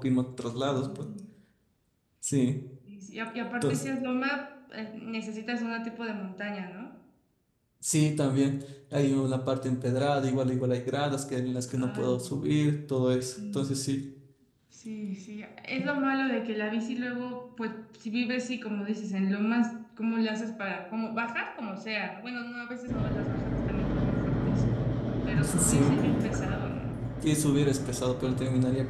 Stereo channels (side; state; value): both; identical; correlation 1.00